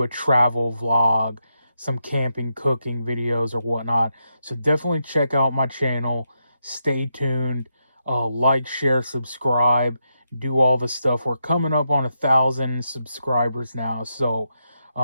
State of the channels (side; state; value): both; inverted; correlation -0.84